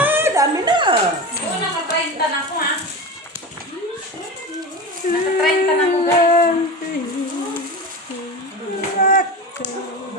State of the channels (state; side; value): normal; both; correlation 0.26